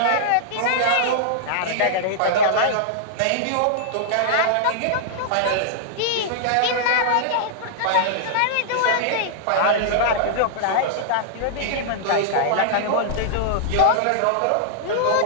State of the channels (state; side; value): different; both; correlation -0.01